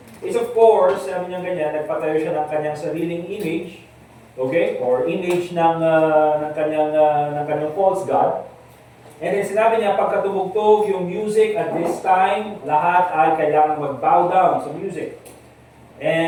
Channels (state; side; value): identical; both; correlation 1.00